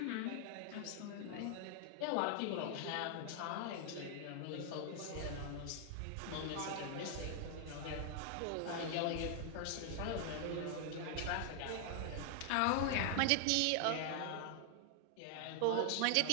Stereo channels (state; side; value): different; both; correlation 0.00